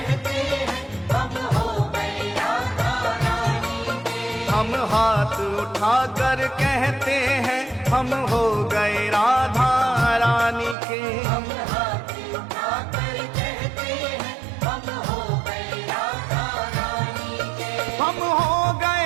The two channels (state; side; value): drops out; left; at 10.8 s